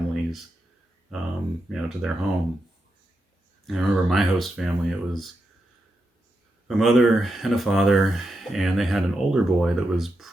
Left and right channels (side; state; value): both; normal; correlation 0.86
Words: you know, to their home. And I remember my host family, it was a mother and a father, and they had an older boy that was